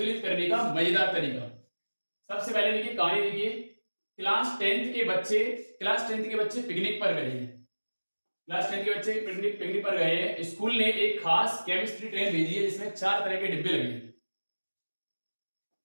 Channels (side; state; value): both; inverted; correlation -1.00